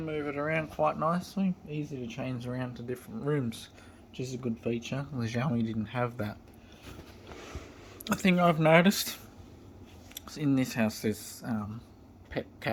move it around quite nicely. Easy to change around to different rooms, which is a good feature. The Xiaomi didn't have that. The thing I've noticed is in this house there's pet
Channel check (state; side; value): identical; both; correlation 1.00